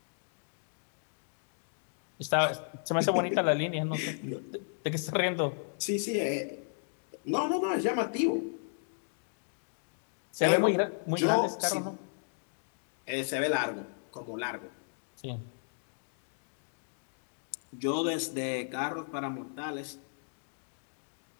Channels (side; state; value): right; silent; digital silence